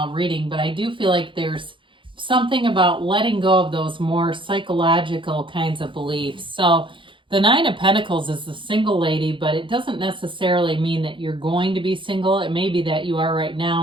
reading, but I do feel like there's something about letting go of those more psychological kinds of beliefs. So the Nine of Pentacles is the single lady, but it doesn't necessarily mean that you're going to be single. It may be that you are right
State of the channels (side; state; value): left; late; 0.24 ms